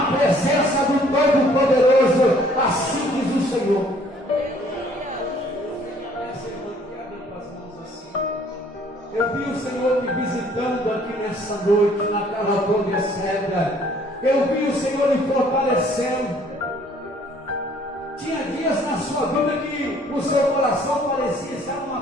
presença do Todo-Poderoso. Assim diz o Senhor. Eu vi o Senhor te visitando aqui nessa noite, na Calabronha Cedra. Eu vi o Senhor lhe fortalecendo. Tinha dias na sua vida que o seu coração parecia estar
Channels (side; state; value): both; normal; correlation 0.59